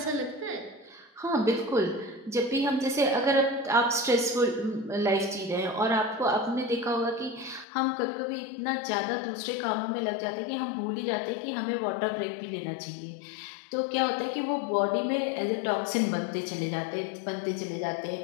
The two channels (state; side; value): drops out; right; at 7.7 s